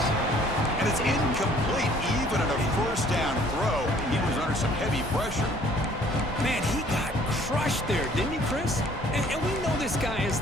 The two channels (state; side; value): normal; both; correlation 0.57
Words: And it's incomplete even on a first down throw. He was under some heavy pressure. Man, he got crushed there, didn't he, Chris? And we know this guy is